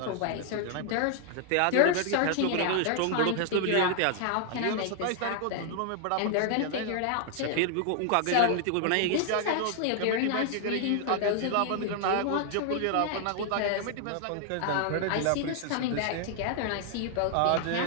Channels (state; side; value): different; both; correlation 0.00